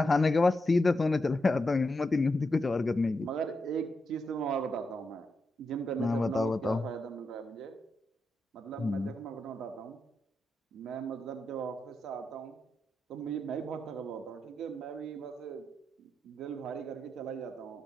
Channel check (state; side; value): normal; both; correlation 0.86